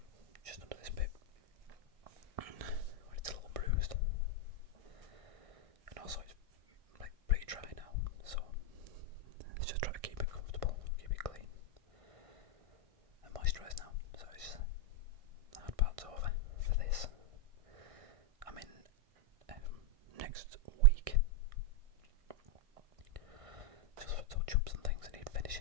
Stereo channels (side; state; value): left; late; 1.6 ms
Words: just under this bit where it's a little bruised, and also it's like pretty dry now, so let's just try to keep it comfortable, keep it clean and moisturised now. So it's the hard part's over for this. I'm in next week just for touch-ups and things I need